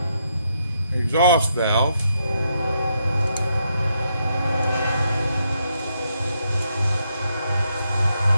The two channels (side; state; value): both; inverted; correlation -0.78